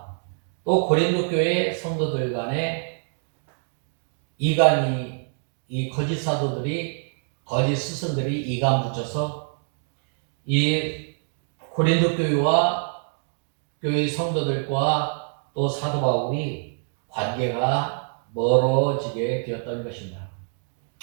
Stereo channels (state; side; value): silent; left; 61 dB below the other